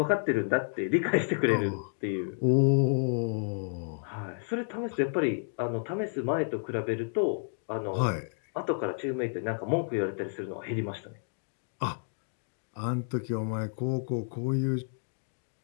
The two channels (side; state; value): right; silent; digital silence